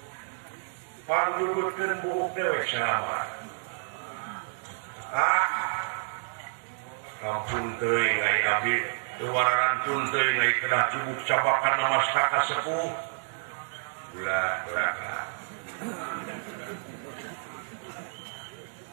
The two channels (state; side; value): silent; left; 58 dB below the other